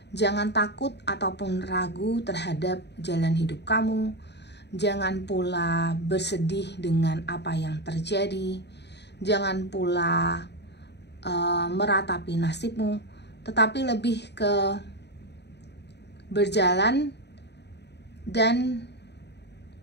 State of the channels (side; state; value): right; late; 0.50 ms